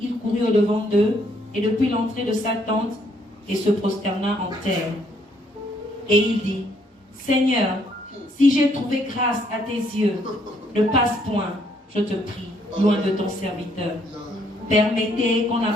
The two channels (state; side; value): normal; both; correlation 0.69